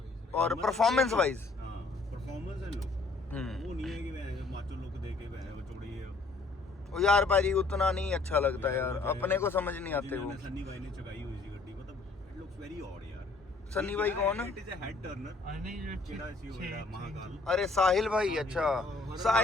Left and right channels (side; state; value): right; quieter; 3.6 dB